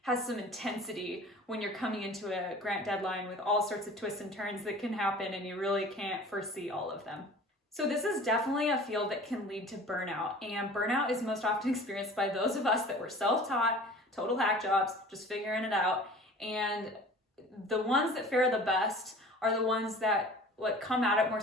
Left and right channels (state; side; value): normal; both; correlation 0.44